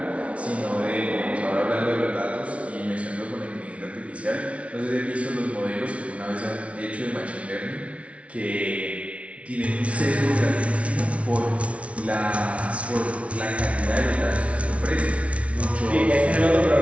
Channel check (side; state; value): left; late; 0.063 ms